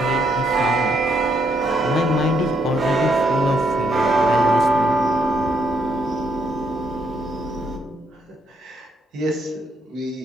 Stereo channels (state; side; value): normal; both; correlation 0.74